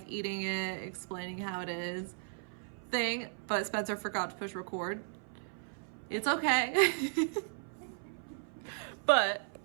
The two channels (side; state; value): left; silent; 54 dB below the other